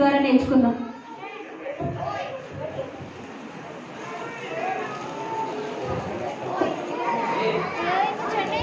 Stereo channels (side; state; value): both; identical; correlation 1.00